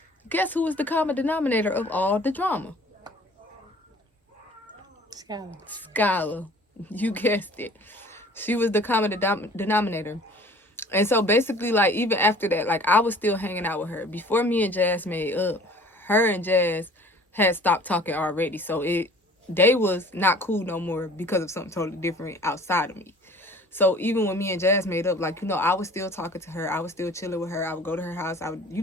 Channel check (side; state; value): both; normal; correlation 0.49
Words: guess who was the common denominator of all the drama? Skylar. You guessed it. She was the common denominator. And so basically, like, even after that, like, I was still hanging out with her. Before me and Jazz made up, her and Jazz had stopped talking already. So they was not cool no more because of something totally different outside of me. So even when me and Jazz made up, like, you know, I was still talking to her. I was still chilling with her. I would go to her house. I would, you